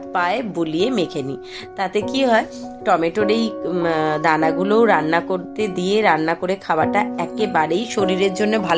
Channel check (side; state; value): both; identical; correlation 1.00